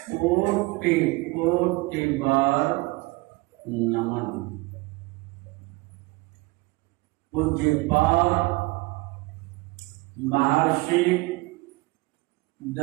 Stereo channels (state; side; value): quieter; left; 23.3 dB